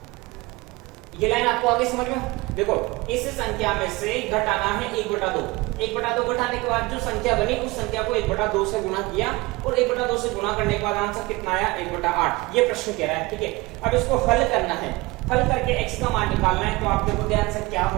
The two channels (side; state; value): left; quieter; 22.8 dB